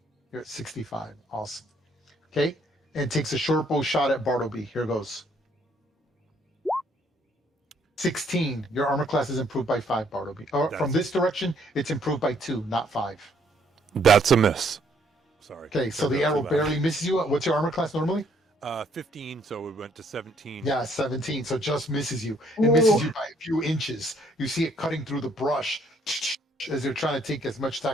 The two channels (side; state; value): both; normal; correlation 0.67